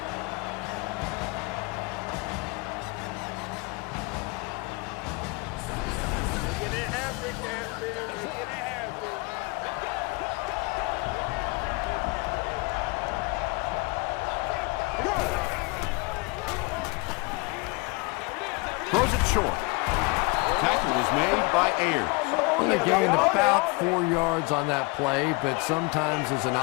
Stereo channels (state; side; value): quieter; right; 27.3 dB